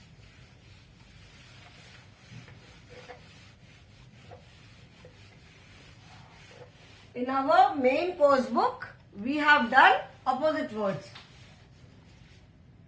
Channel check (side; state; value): both; identical; correlation 1.00